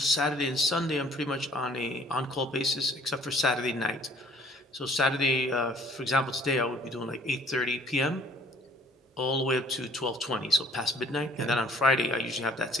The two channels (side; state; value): both; normal; correlation 0.57